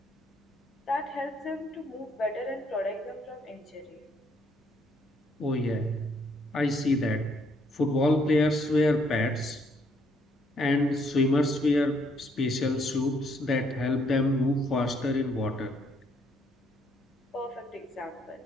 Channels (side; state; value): both; normal; correlation 0.69